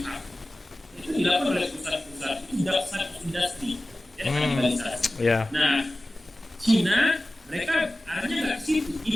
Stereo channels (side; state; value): both; normal; correlation 0.96